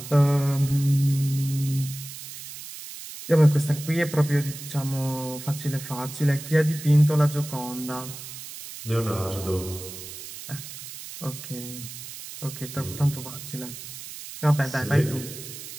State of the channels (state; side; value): noise; right; hiss, 12 dB below the sound